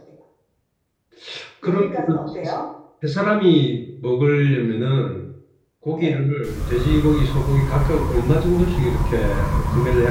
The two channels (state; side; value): identical; both; correlation 1.00